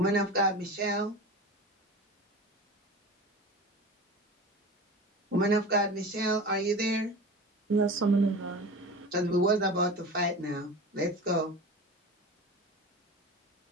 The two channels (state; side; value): normal; both; correlation 0.33